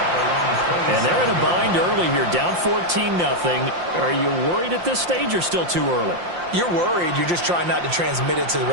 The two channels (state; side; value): late; left; 5.7 ms